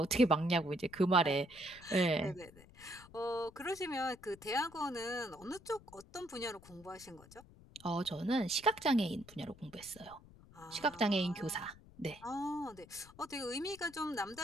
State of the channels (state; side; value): noise; left; rumble, 22 dB below the sound